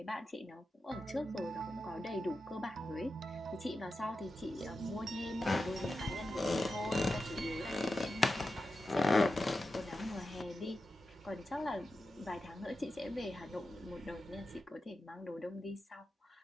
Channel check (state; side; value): normal; both; correlation 0.91